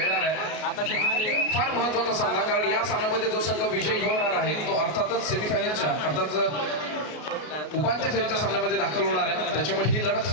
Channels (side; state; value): right; late; 33 ms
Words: आहे. फार महत्वाचा सामना, कारण या सामन्यामध्ये जो संघ विजयी होणार आहे तो अर्थातच सेमीफायनलच्या अर्थात उपांत्य फेरीच्या सामन्यामध्ये दाखल होणार आहे. त्याच्यामुळे ही लढत